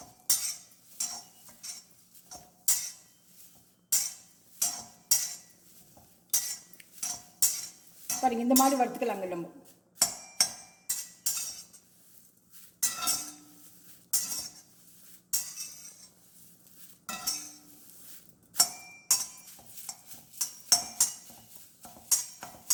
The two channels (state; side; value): identical; both; correlation 1.00